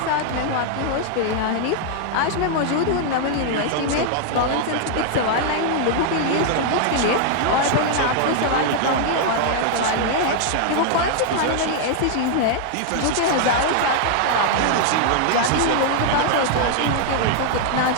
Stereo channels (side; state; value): both; different; correlation 0.00